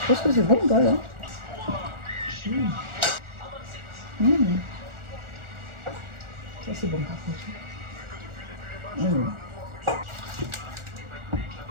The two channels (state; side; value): late; left; 1.4 ms